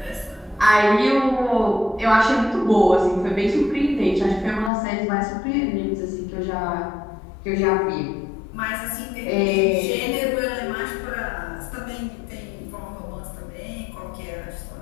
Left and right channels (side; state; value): right; drops out; at 4.7 s